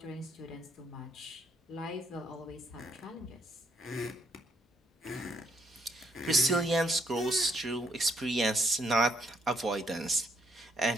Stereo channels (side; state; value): both; normal; correlation 0.71